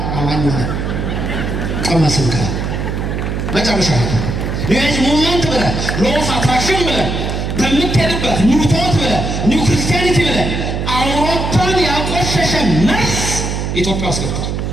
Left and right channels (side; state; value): right; noise; hum, 2 dB below the sound